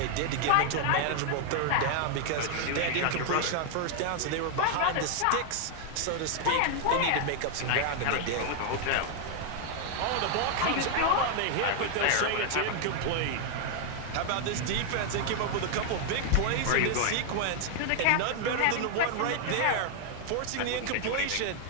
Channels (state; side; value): different; both; correlation 0.00